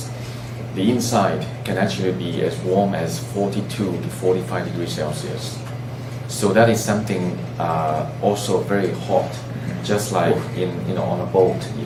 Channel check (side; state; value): both; identical; correlation 1.00